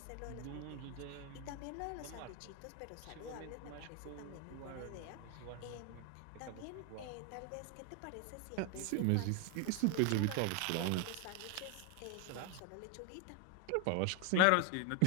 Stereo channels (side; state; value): both; different; correlation 0.01